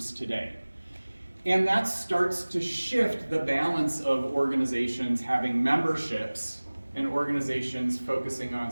today. And that starts to shift the balance of organizations having memberships and organizations focusing on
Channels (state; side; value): inverted; both; correlation -1.00